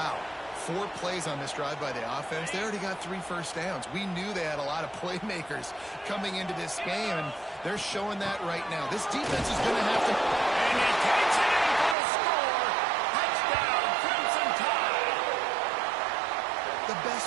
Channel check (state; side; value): drops out; left; at 12.0 s